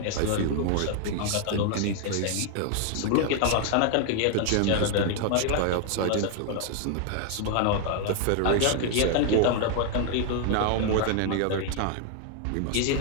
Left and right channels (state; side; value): different; both; correlation 0.00